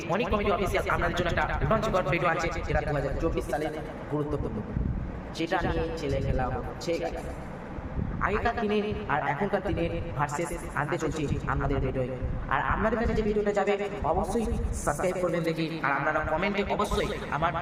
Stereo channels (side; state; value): both; identical; correlation 1.00